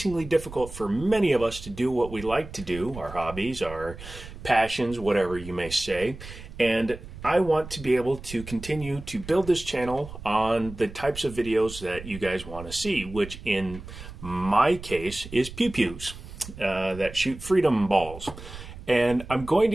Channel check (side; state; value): right; noise; rumble, 13 dB below the sound